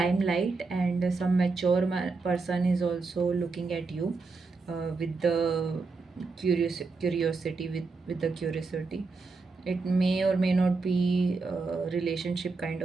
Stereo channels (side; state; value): left; quieter; 4.1 dB